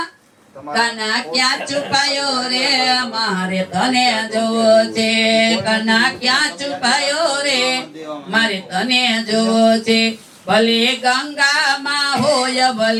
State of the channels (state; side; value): identical; both; correlation 1.00